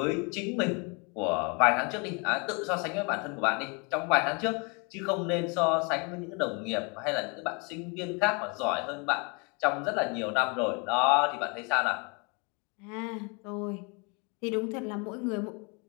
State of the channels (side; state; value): right; quieter; 32.6 dB